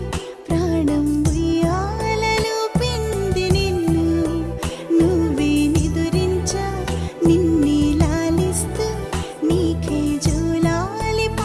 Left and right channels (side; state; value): both; identical; correlation 1.00